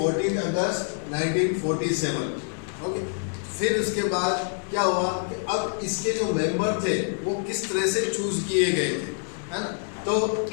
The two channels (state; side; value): silent; right; 59 dB below the other